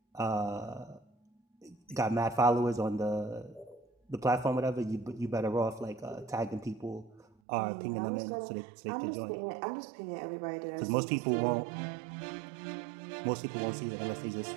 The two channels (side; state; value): left; drops out; at 7.2 s